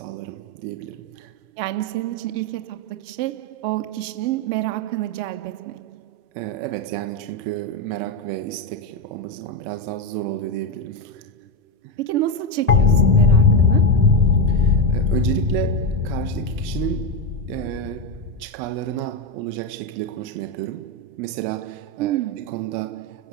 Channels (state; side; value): late; left; 3.4 ms